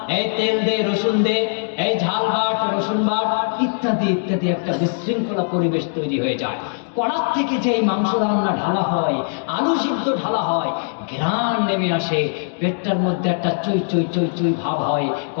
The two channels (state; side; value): silent; right; digital silence